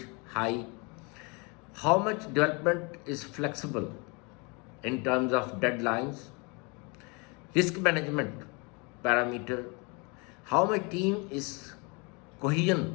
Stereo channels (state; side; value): quieter; right; 30.4 dB